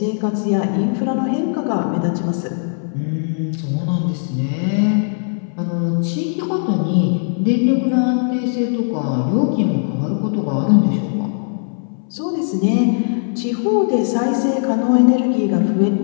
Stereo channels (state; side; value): silent; right; 64 dB below the other